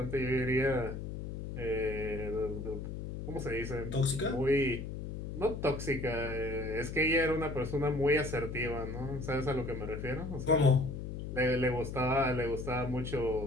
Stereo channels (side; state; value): left; noise; hum, 6 dB below the sound